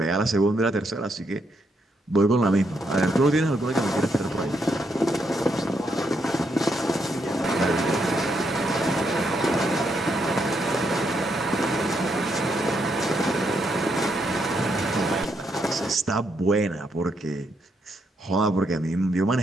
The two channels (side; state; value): both; normal; correlation 0.78